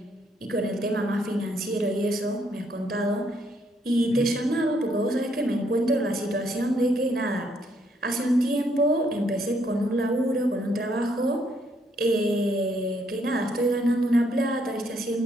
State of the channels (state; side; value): normal; both; correlation 0.71